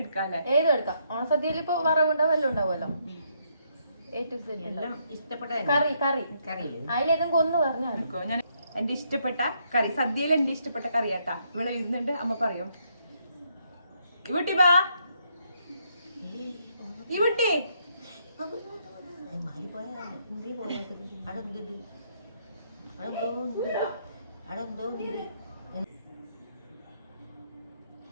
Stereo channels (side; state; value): both; inverted; correlation -0.74